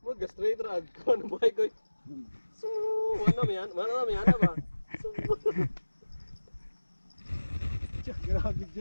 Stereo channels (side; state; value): both; inverted; correlation -1.00